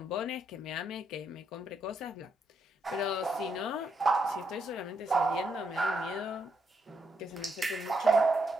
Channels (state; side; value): normal; both; correlation 0.78